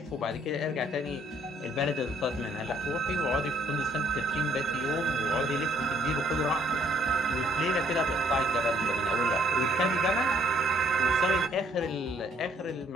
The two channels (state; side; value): normal; both; correlation 0.65